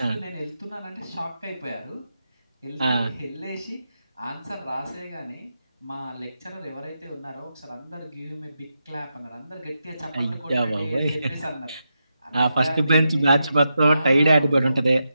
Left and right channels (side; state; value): both; inverted; correlation -0.87